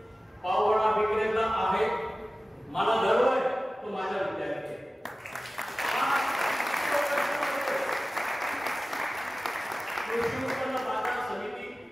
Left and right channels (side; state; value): both; normal; correlation 0.96